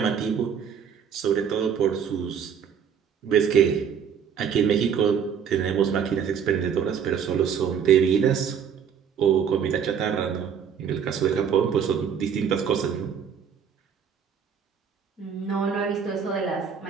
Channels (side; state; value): left; quieter; 7.5 dB